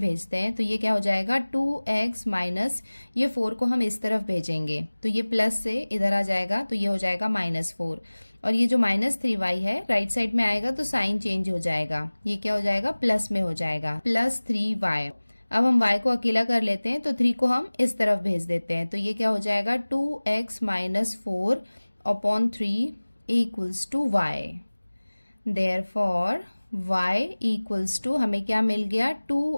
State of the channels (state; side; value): inverted; both; correlation -1.00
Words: हैं। तो ये क्या हो जाएगा 2x माइनस ये 4 को हम इस तरफ भेजेंगे तो ये प्लस से इधर आ जाएगा, तो ये हो जाएगा -4 और ये जो -3y है राइट साइड में आएगा तो साइन चेंज हो जाएगा, ये क्या हो जाएगा प्लस में हो जाएगा +3y। अब हम y को अकेला कर लेते हैं तो 3 को हम इस तरफ भेज देते हैं तो ये क्या हो जाएगा 2x minus 4 upon 3 equals to y। Therefore y equals to हमें क्या मिल गया